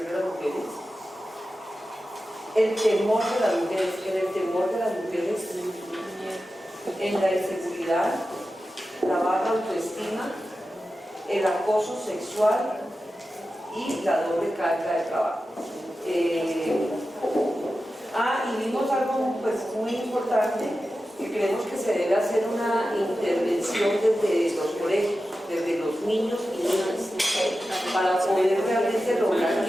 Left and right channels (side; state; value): both; normal; correlation 0.93